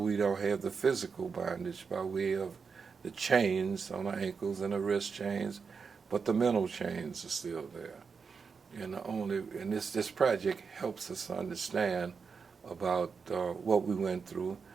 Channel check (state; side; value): quieter; left; 5.5 dB